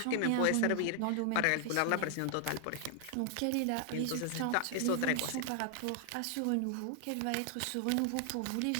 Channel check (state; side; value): different; both; correlation 0.00